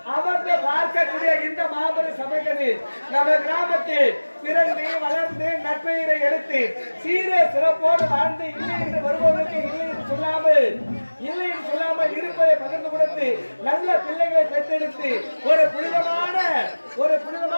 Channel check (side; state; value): both; inverted; correlation -1.00